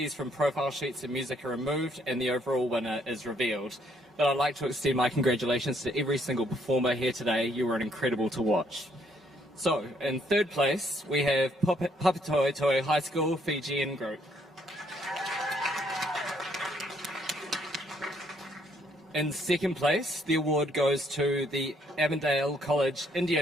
from profile sheets and music are removed, and the overall winner is revealed. But I'd like to extend my congratulations to every single performer here today. You were incredible to watch. So, in third place, we have Papatoetoe High School Fijian Group. In second place, the award goes to the Avondale College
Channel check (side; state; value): both; normal; correlation 0.68